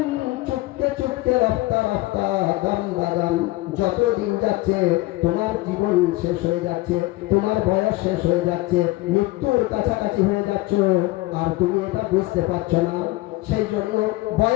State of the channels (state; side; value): quieter; right; 19.6 dB